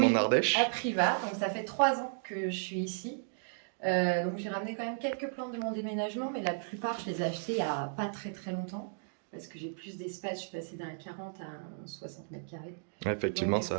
en Oui, à Ardèche. Privas. Donc ça fait 3 ans que je suis ici. Donc j'ai ramené quand même quelques plantes de mon déménagement, mais la plupart je les ai achetées il n'y a pas très très longtemps. Parce que j'ai plus d'espace, je suis passée d'un 40 à un 60 mètres carrés. Ouais, Donc effectivement, du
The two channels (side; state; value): left; silent; digital silence